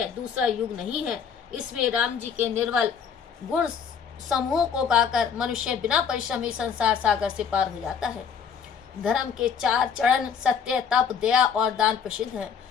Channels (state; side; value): quieter; right; 7.0 dB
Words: दूसरा युग नहीं है, इसमें राम जी के निर्मल गुण समूह को गाकर मनुष्य बिना परिश्रम ही संसार सागर से पार हो जाता है। धर्म के 4 चरण सत्य, तप, दया और दान प्रसिद्ध हैं,